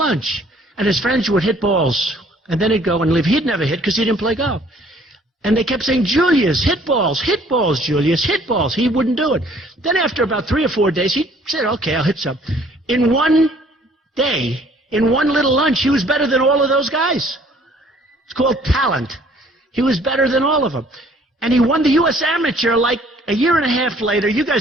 And his friends would hit balls. And then he'd go and leave. He'd never hit because he didn't play golf. And they kept saying, Julius, hit balls, Julius, hit balls. He wouldn't do it. Then after about 3 or 4 days, he said, okay, I'll hit some. In one day, in one little lunch, he was better than all of those guys. It's called talent. He was better than all of them. And he won the U.S. Amateur like a year and a half later. You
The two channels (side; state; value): both; normal; correlation 0.58